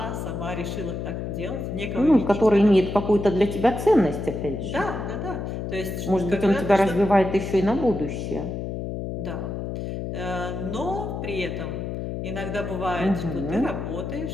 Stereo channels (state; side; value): noise; left; hum, 5 dB below the sound